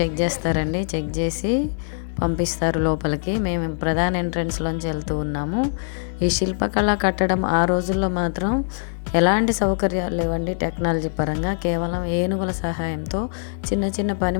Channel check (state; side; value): silent; right; digital silence